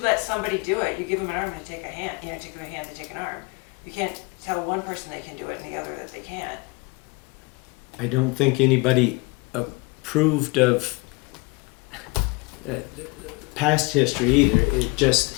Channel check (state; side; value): quieter; right; 27.2 dB